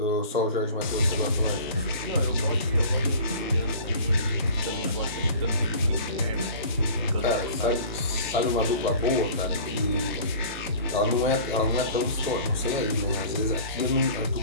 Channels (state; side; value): inverted; both; correlation -0.43